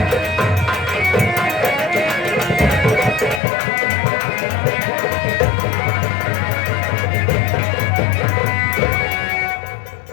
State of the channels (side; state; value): right; drops out; at 3.4 s